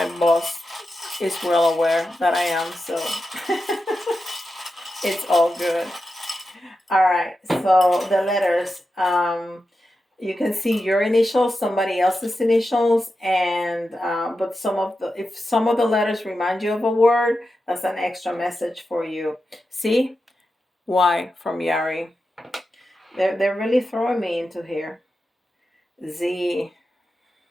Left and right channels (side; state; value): both; normal; correlation 0.90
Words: boss is well aware that I am, so it's all good. All right, so the letters, you can see your initials, somebody else's initials, and but if some of the letters remind you of a word, that's an extra message for you. See, Y from Yari. They're really throwing me into here. Z,